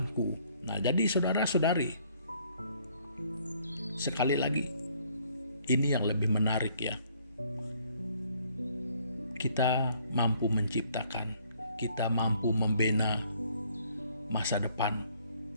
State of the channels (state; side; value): inverted; both; correlation -0.64